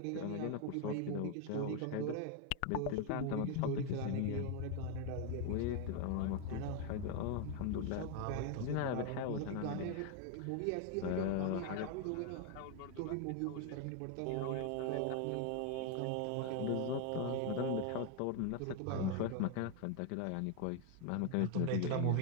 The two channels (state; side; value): different; both; correlation 0.01